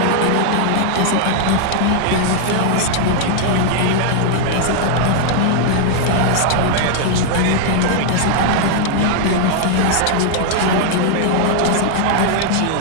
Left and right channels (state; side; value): different; both; correlation 0.00